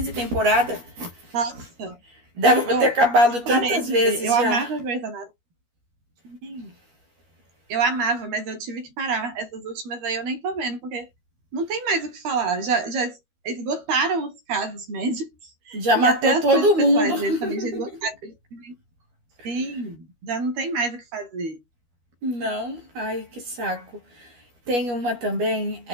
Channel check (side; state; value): left; late; 12 ms